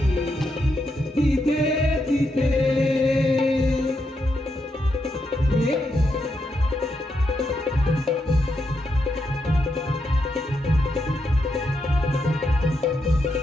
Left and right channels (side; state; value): both; normal; correlation 0.82